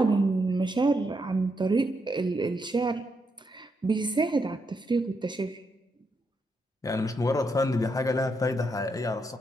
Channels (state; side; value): normal; both; correlation 0.80